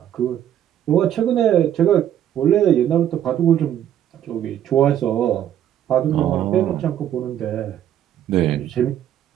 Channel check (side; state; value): left; quieter; 10.7 dB